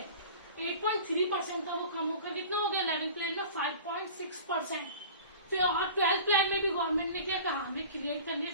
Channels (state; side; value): inverted; both; correlation -0.40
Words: 8.3% था वो कम होकर कितना हो गया 11th प्लान में 5.6%. फिर और 12th प्लान में भी गवर्नमेंट ने क्या कहा, हमें क्रिएट करने